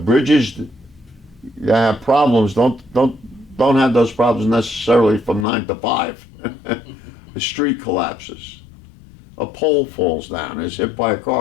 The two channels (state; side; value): drops out; right; at 5.5 s